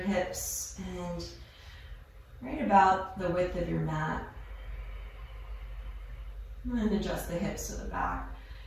hips. and right about the width of your mat. And adjust the hips to the back.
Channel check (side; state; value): both; identical; correlation 1.00